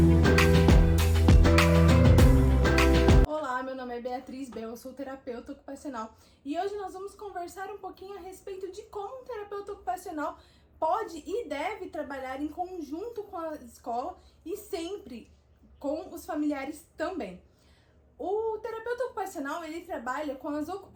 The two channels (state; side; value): identical; both; correlation 1.00